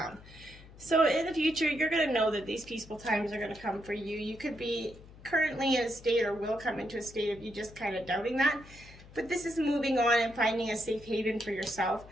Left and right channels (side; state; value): left; noise; hum, 20 dB below the sound